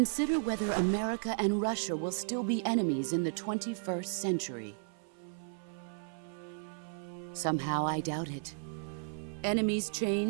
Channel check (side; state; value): left; silent; 55 dB below the other